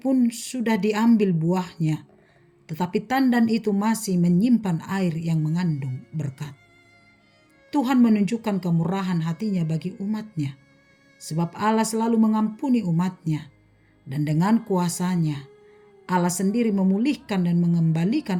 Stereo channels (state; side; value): identical; both; correlation 1.00